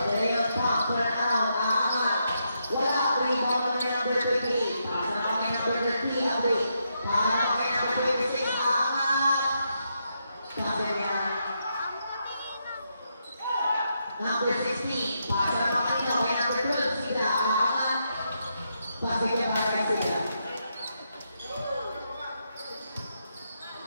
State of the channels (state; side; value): inverted; both; correlation -0.81